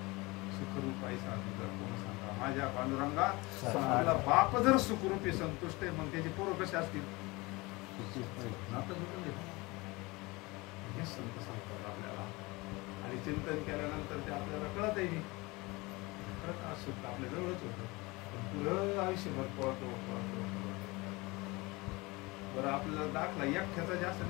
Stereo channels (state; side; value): quieter; right; 23.6 dB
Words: सुखरूप आहे. कोण सांगा माझ्या पांडुरंगा आपला बाप जर सुखरूपी संतुष्ट आहे मग त्याचे पोरं कसे असतील नातं जोडून दिलं हे संत सांगतात आपल्याला. आणि चिंतन केल्यानंतर ते आपल्याला कळत आहे खरंच आज सुद्धा आपल्या जवळच होतं पुढं आयुष्यभर पळतो. बरं आपल्याला दाखला एकट्याचा जास्त